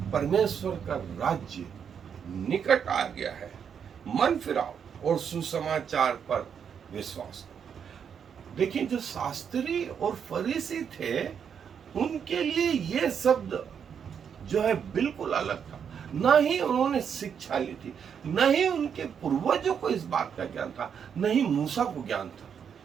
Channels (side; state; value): left; quieter; 7.5 dB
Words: परमेश्वर का राज्य निकट आ गया है, मन फिराओ और सुसमाचार पर विश्वास करो। देखिए, जो शास्त्री और फरीसी थे उनके लिए यह शब्द जो है बिल्कुल अलग था। न ही उन्होंने शिक्षा ली थी, न ही उनके पूर्वजों को इस बात का ज्ञान था, न ही मूसा को ज्ञान था।